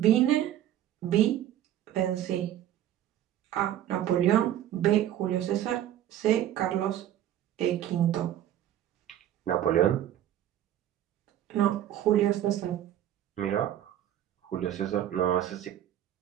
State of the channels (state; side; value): quieter; left; 11.7 dB